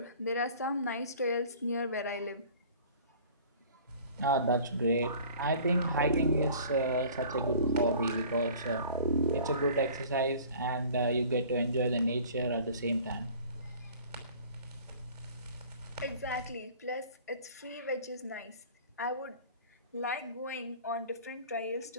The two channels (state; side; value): inverted; both; correlation -0.47